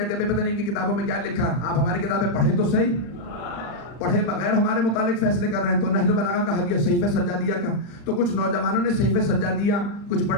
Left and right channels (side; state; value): right; late; 40 ms